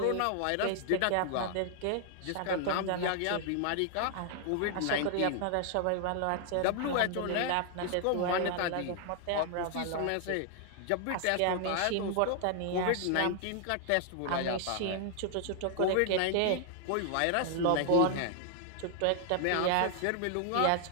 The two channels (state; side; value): different; both; correlation 0.00